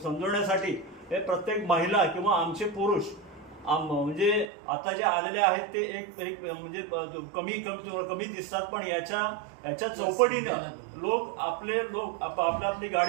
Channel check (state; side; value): drops out; left; at 4.5 s